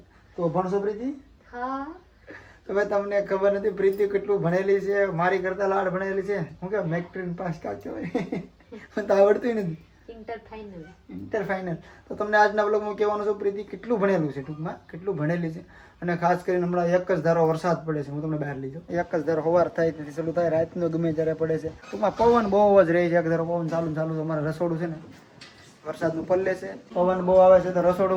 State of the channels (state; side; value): identical; both; correlation 1.00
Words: તો અભણ છો પ્રીતિ? હા. તો ભાઈ તમને ખબર નથી પ્રીતિ કેટલું ભણેલી છે, મારી કરતા લાડ ભણેલી છે. હું કે મેટ્રિક પાસ કાચો હોય મને તો આવડતું નથી. Inter final. તો તમને આજના વ્લોગમાં કહેવાનું છે પ્રીતિ કેટલું ભણેલું છે, ટૂંકમાં કેટલું ભણેલી છે. અને ખાસ કરીને હમણાં એક જ ધારો વરસાદ પડે છે. હું તમને બહાર લઈ જાઉં. એક જ ધારો સવાર થાય તેથી ચાલુ થાય, રાતનો ગમે ત્યારે પડે છે. ટૂંકમાં પવન બહુ જ રહે છે. એક ધારો પવન ચાલુ છે. અમારે રસોડું છે ને વરસાદનું પલ્લે છે, પવન બહુ આવે છે. તો રસોડું